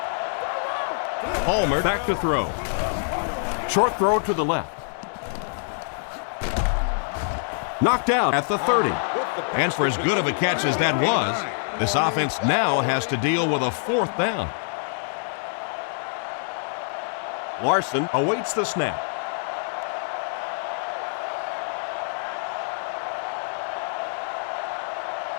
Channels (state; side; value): silent; right; digital silence